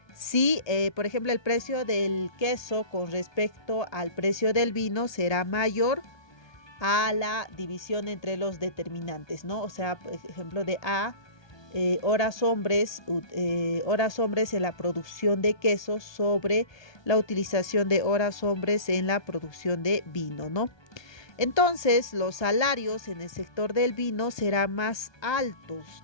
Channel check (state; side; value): late; right; 1.2 ms